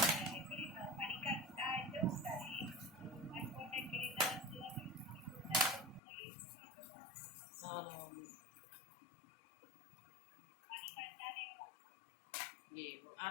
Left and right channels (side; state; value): right; drops out; at 6.0 s